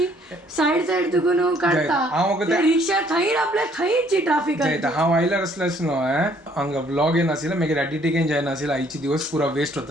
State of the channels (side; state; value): both; normal; correlation 0.63